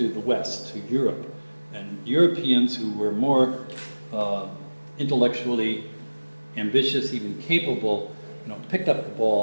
the West, to Europe, and Europeans who were more intellectually ambitious, even capable, picked up the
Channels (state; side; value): inverted; both; correlation -1.00